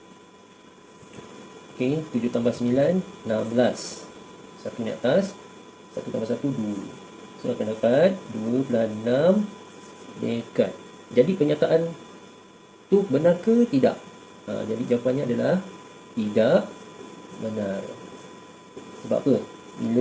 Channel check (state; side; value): identical; both; correlation 1.00